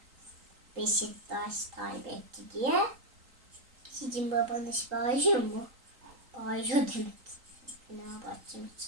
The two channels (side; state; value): left; late; 3.8 ms